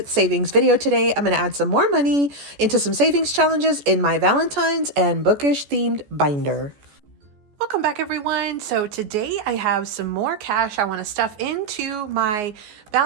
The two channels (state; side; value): late; left; 14 ms